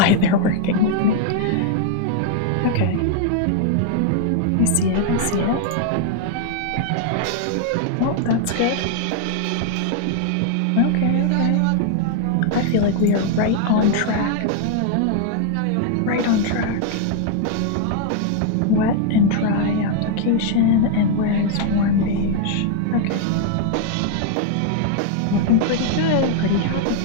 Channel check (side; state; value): both; different; correlation 0.00